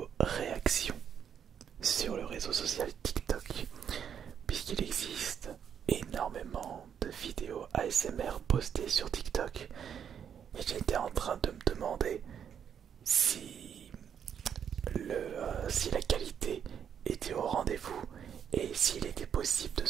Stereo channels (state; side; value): quieter; left; 8.3 dB